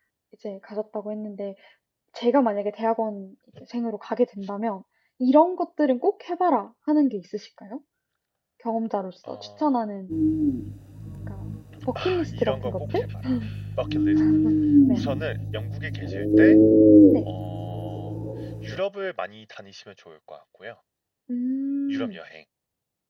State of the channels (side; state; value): both; identical; correlation 1.00